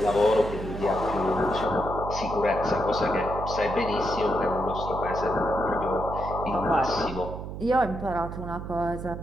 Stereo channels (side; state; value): right; noise; hum, 8 dB below the sound